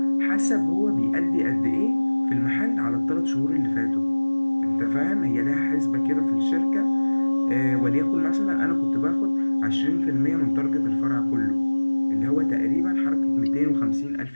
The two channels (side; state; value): both; inverted; correlation -1.00